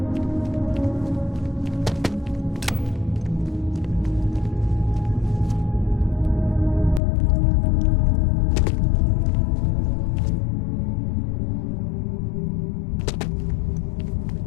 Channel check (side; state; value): right; drops out; at 7.0 s